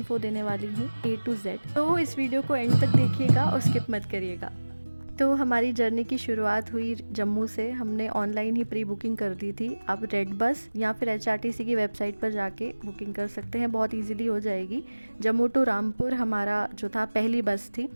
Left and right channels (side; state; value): both; inverted; correlation -1.00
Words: देने वाली हूँ A to Z, तो इस वीडियो को एंड तक देखिएगा और स्किप मत करिएगा। तो हमारी जर्नी की शुरुआत हुई जम्मू से। हमने ऑनलाइन ही प्री बुकिंग कर दी थी। आप रेड बस या फिर HRTC की वेबसाइट पर जाके बुकिंग कर सकते हैं, बहुत इजीली हो जाएगी। जम्मू टू रामपुर हमारा जो था पहली बस थी,